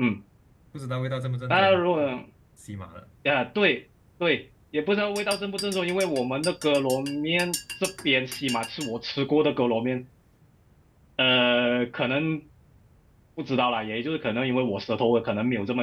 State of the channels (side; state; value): both; identical; correlation 1.00